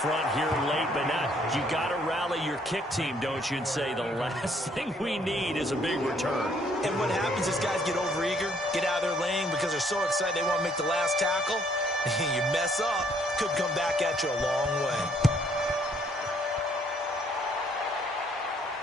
here late, but not. You got to rally your kick team, don't you, and say the last thing we need is a big return. And what happens is guys get overeager, get out of their lane because they're so excited they want to make the last tackle. You mess up, could come back at you a long way.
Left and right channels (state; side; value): normal; both; correlation 0.66